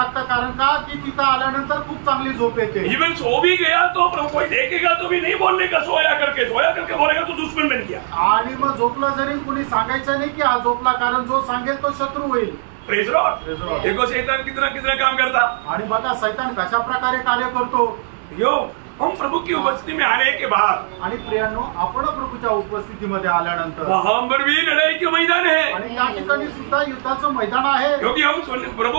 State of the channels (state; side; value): silent; left; digital silence